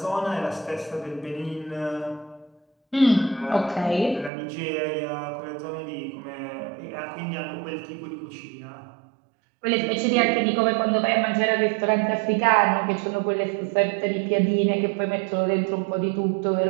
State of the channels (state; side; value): drops out; left; at 4.3 s